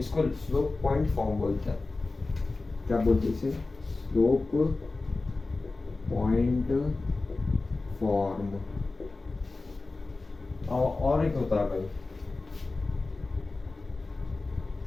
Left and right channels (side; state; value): right; quieter; 3.4 dB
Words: स्लोप पॉइंट फॉर्म बोलते हैं। क्या बोलते हैं इसे? Slope point form. और एक होता है भाई